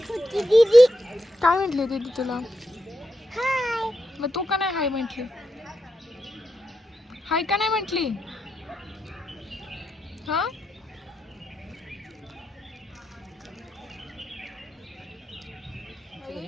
दीदी काय म्हटली दीदी तुला? हाय. मग तू का नाही हाय म्हटली? हाय का नाही म्हटली? हा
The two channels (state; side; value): normal; both; correlation 0.85